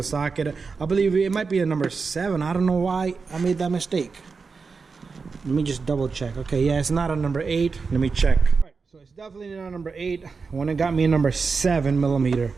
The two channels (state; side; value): quieter; left; 4.8 dB